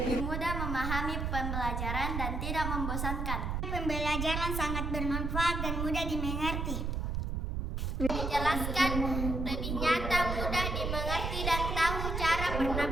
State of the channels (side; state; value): right; noise; rumble, 2 dB below the sound